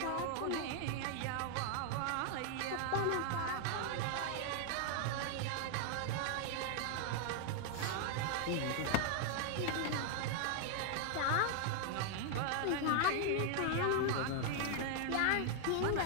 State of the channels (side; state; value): both; different; correlation 0.00